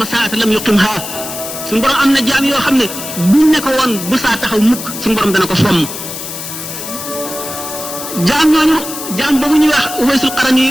saata lam yuqimha suñu borom am na jaam yoo xam ne buñ ne ko woon bu saa taxaw mukk suñu borom dana ko fomm jaam ñooñu jaam boobu ñuy wax Uwaysul Qarani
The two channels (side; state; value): left; noise; hiss, 8 dB below the sound